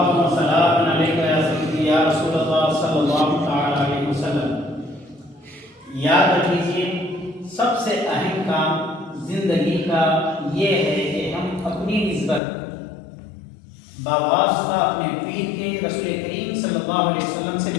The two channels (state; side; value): drops out; right; at 12.4 s